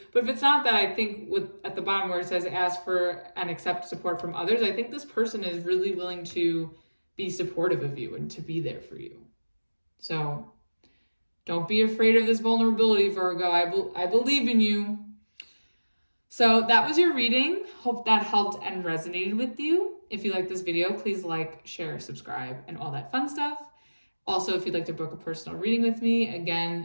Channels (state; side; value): inverted; both; correlation -1.00